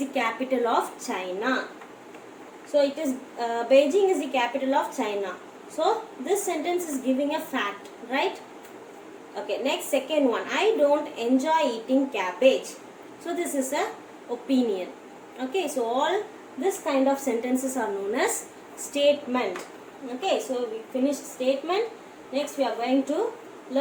capital of China. So it is Beijing is the capital of China. So this sentence is giving a fact, right? Okay, next second one. I don't enjoy eating cabbage. So this is a opinion. Okay, so all this kind of sentences are known as statement. Okay, so we finished statement. Next we are going to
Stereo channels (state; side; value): identical; both; correlation 1.00